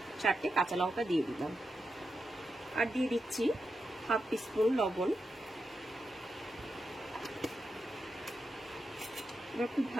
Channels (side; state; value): both; normal; correlation 0.87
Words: 4টে কাঁচা লঙ্কা দিয়ে দিলাম। আর দিয়ে দিচ্ছি হাফ টিস্পুন লবণ। এবার খুব